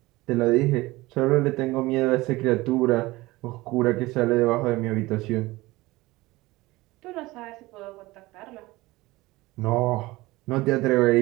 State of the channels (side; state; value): left; quieter; 20.1 dB